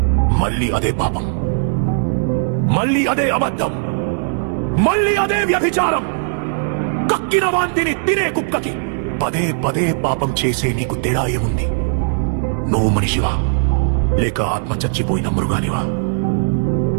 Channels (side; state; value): left; silent; 67 dB below the other